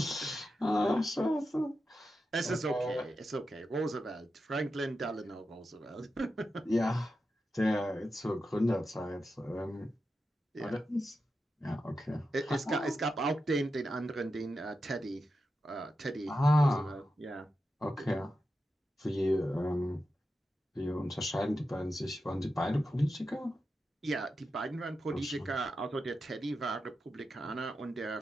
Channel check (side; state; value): both; normal; correlation 0.89